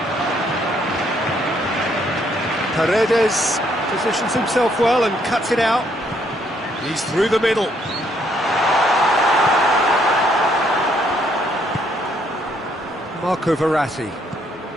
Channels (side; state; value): both; normal; correlation 0.69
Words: Paredes positions himself well and cuts it out. He's through the middle. Marco Verratti.